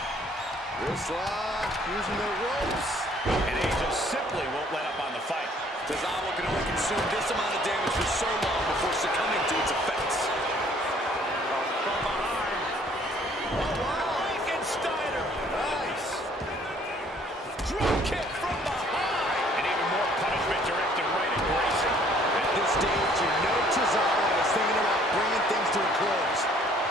Wrist lock, using the ropes. And Angel simply won't let up on the fight. Tozawa can only consume this amount of damage for so long before succumbing to its effects. From behind. Oh, wow. Frankensteiner. Nice. Drop kick from behind. And even more punishment directed right at Grayson. At this stage, you know Tozawa is thinking about bringing things to a close.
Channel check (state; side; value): normal; both; correlation 0.60